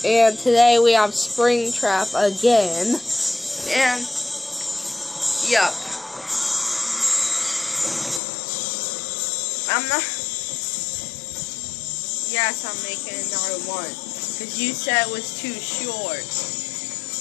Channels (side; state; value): right; drops out; at 8.2 s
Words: and today we have Springtrap again, and yep, yes, I'm making another one, because you said it was too short.